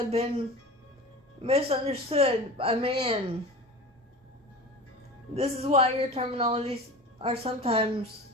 been misunderstood by man. This is why your terminologies are sometimes,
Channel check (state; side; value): normal; both; correlation 0.33